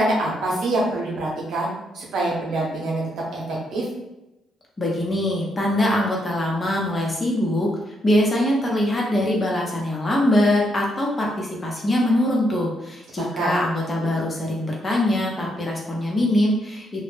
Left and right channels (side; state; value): both; normal; correlation 0.77